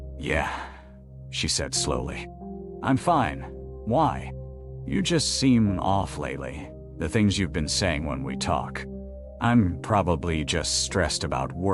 "Yeah," she said slowly. "I'm fine. Why? You just seem off lately, the things you've been saying when we talk." "I'm probably just stressed about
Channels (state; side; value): identical; both; correlation 1.00